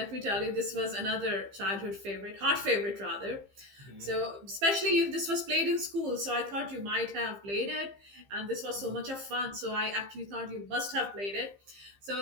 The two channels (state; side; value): late; left; 15 ms